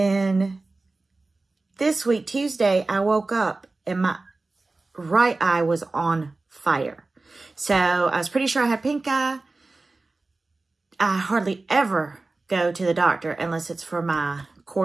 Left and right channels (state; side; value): quieter; left; 3.4 dB